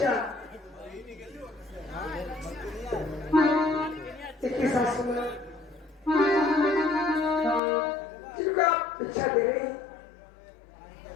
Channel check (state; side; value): drops out; right; at 7.6 s